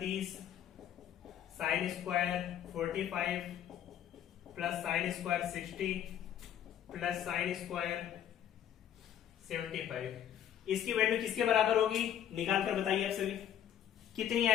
sine square 45 + sign square 60 + sign square 75, इसकी वैल्यू किसके बराबर होगी, निकाल कर बताइए आप सभी, कितनी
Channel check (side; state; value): right; quieter; 10.1 dB